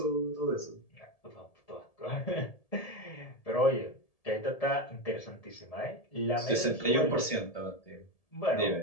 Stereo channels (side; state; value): right; late; 1.7 ms